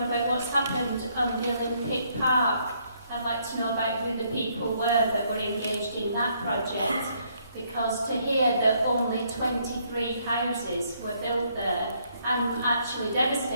about what's happened on the Olympic Park. I'd like to know about who the people were that were engaged in that project, because to hear that only 23 houses were built there, I'm actually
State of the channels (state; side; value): inverted; both; correlation -0.70